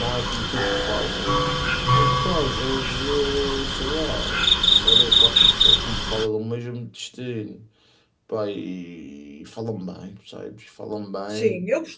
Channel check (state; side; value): identical; both; correlation 1.00